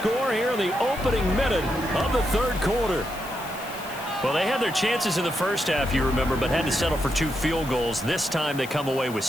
here in the opening minute of the 3rd quarter. Well, they had their chances in the first half, you remember, but had to settle for 2 field goals. This time they come away with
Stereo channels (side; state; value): left; noise; hiss, 16 dB below the sound